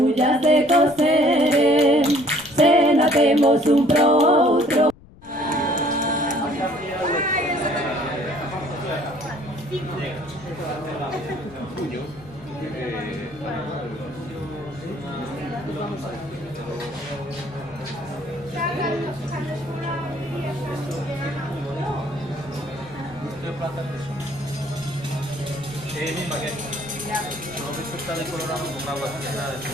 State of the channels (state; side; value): noise; left; rumble, 23 dB below the sound